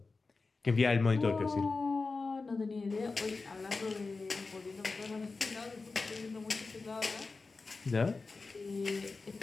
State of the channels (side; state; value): right; quieter; 4.0 dB